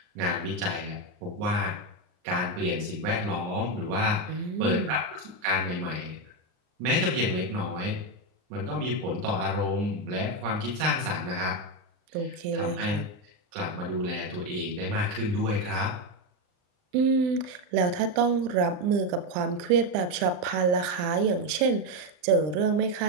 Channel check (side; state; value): left; late; 39 ms